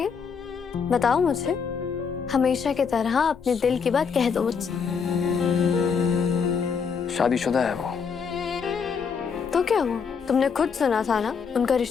बताओ मुझे। हमेशा की तरह अपने दिल की बात कह दो मुझसे। शादीशुदा है वो। तो क्या हुआ, तुमने खुद सुना था ना, उनका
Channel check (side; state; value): right; quieter; 6.1 dB